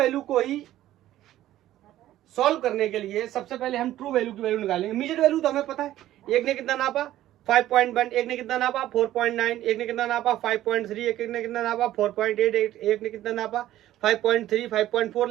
को ही सॉल्व करने के लिए सबसे पहले हम ट्रू वैल्यू की वैल्यू निकालेंगे। मीजर्ड वैल्यू तो हमें पता है, एक ने कितना नापा 5.1, एक ने कितना नापा 4.9, एक ने कितना नापा 5.3, एक ने कितना नापा 4.8, एक ने कितना नापा 5.3, 5.4,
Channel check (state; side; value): quieter; left; 13.8 dB